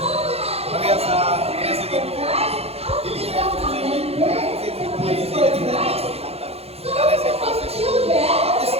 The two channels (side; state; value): left; late; 0.29 ms